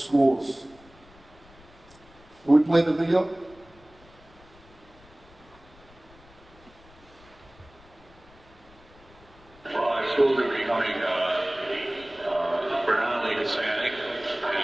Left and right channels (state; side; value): noise; left; rumble, 25 dB below the sound